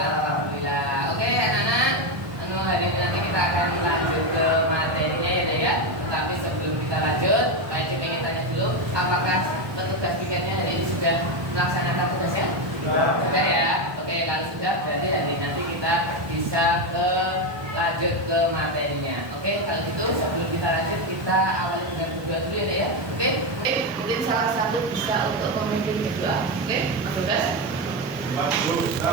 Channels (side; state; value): left; late; 1.2 ms